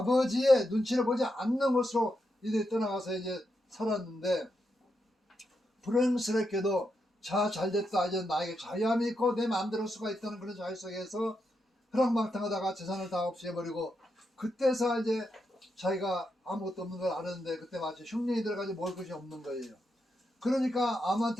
눈치를 보지 않는 곳으로 이들이 떠나가서 이제 살았는데, 불행스럽게도 자 잘됐다, 이제 나에게 자유함이 있고 내 마음대로 할 수가 있다는 그런 자유 속에서 허랑방탕하다가 재산을 다 없애버리고, 그때서 이제 자기가 아무것도 없는 걸 아는데 그때 마치 흉년이 들어가지고 먹을 것이 없는 거예요. 그러니까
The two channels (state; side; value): normal; both; correlation 0.84